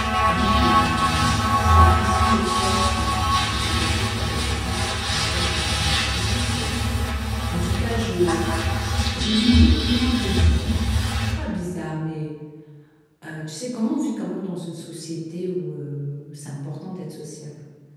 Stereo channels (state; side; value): identical; both; correlation 1.00